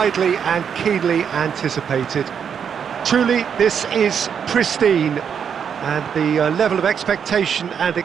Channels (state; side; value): quieter; left; 7.5 dB